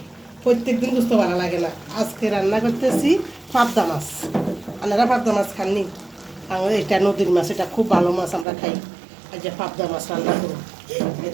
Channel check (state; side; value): drops out; left; at 8.5 s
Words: প্রত্যেকদিন গুস্ত ভালো লাগে না, আজকে রান্না করতেছি পাবদা মাছ। আপনারা পাবদা মাছ খাননি? আমাদের এটা নদীর মাছ, এটা খুব ভালো মাছ, আমরা খাই। আজ যে পাবদা মাছ রান্না করুন,